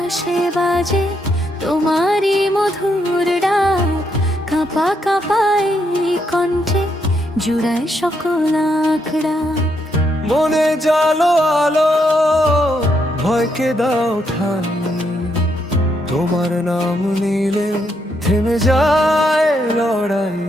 বাজে তোমারই মধুর ডাক, কাঁপা কাঁপাই কণ্ঠে জুড়ায় সকল আঁকড়া। মনে জালো আলো, ভয়কে দাও ঠাই, তোমার নাম নিলে থেমে যায় লড়াই।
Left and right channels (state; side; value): normal; both; correlation 0.77